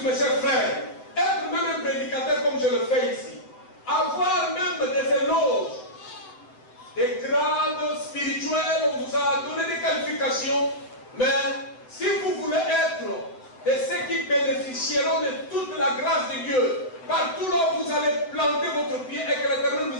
mes chers frères, être même un prédicateur comme je le fais ici, avoir même des éloges, des grades spirituels, on vous a donné des qualifications, mais si vous voulez être de ceux qui bénéficieront de toute la grâce de Dieu, partout là où vous allez planter votre pied et que l'Éternel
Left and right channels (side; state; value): right; late; 8.0 ms